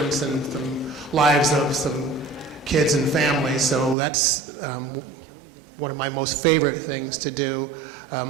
in the lives of some kids and families. So that's one of my most favorite things to do.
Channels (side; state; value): left; drops out; at 4.0 s